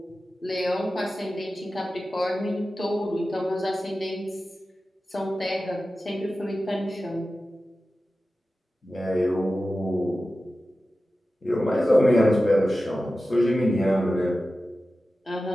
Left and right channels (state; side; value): normal; both; correlation 0.94